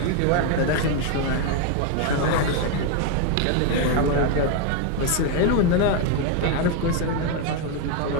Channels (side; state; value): both; different; correlation 0.01